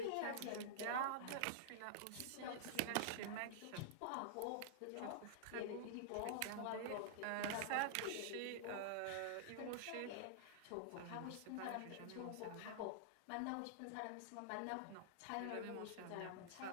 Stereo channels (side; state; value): both; different; correlation -0.02